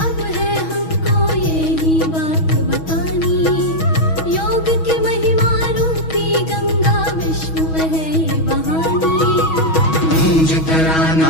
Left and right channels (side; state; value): right; late; 6.2 ms